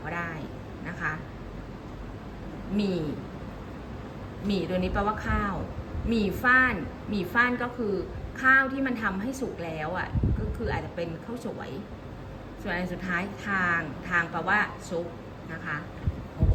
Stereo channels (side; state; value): both; identical; correlation 1.00